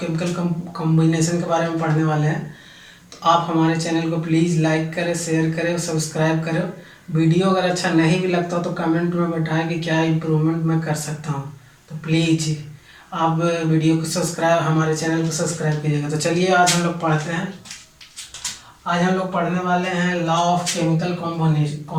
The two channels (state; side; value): identical; both; correlation 1.00